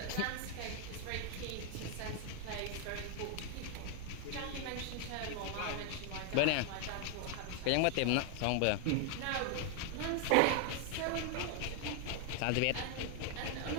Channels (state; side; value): different; both; correlation 0.00